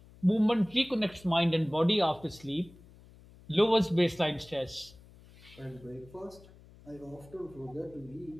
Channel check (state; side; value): noise; left; hum, 23 dB below the sound